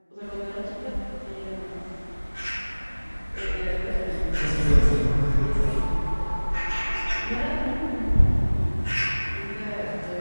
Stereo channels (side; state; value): both; inverted; correlation -1.00